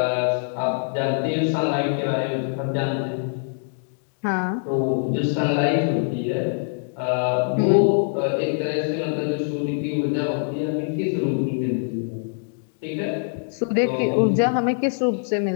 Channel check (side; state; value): right; silent; digital silence